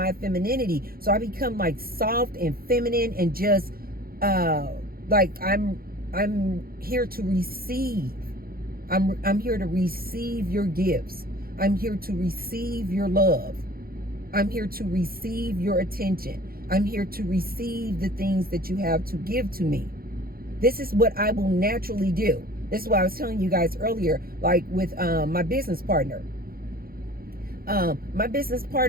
femininity. So I become like soft and feminine and just like I'm here to receive. I'm here to receive your gifts. I'm here to receive your love. I'm here to receive your attention. I'm here to receive the things that you have to give to me. This is what I will naturally do. This is what I was telling you guys earlier, like with my business partner. My business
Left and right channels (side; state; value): left; late; 0.43 ms